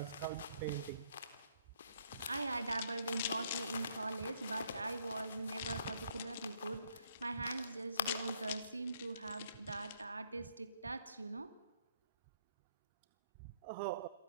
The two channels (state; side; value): inverted; both; correlation -0.70